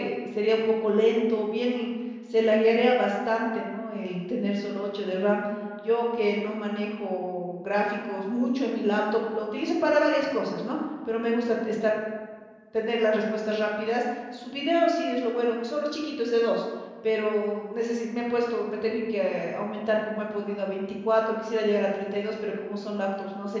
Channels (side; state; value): both; identical; correlation 1.00